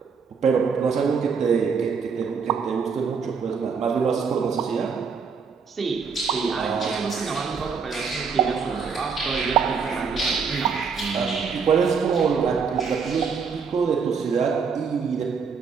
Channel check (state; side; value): quieter; left; 5.8 dB